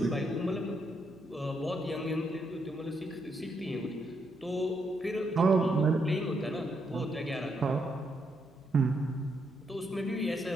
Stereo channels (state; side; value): noise; left; hum, 29 dB below the sound